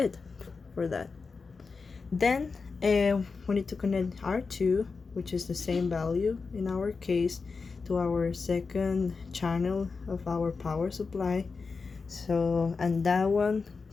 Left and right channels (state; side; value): quieter; right; 4.6 dB